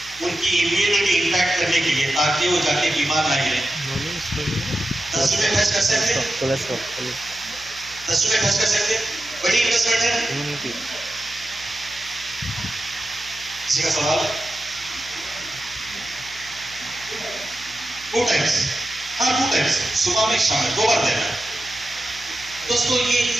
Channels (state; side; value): noise; left; hum, 20 dB below the sound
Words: उनकी इम्यूनिटी इंपैक्ट करने के लिए, ताकि वो जाके बीमार ना गिरे, 10 रुपए खर्च कर सकते? 10 रुपए खर्च कर सकते? बड़ी इन्वेस्टमेंट है। किसी का सवाल? 2 टाइम्स, हाँ 2 टाइम्स, सुबह में शाम में 2 बार देना। दोस्तों ये